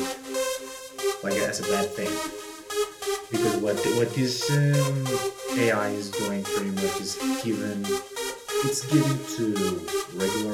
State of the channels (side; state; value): both; identical; correlation 1.00